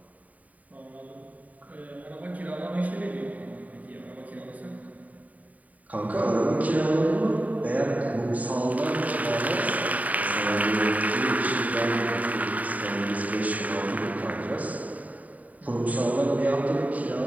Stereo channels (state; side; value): late; left; 0.072 ms